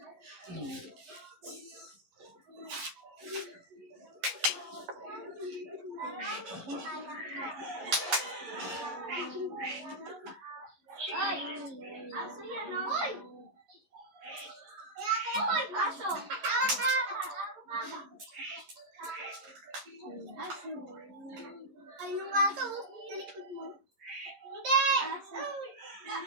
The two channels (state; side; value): late; left; 11 ms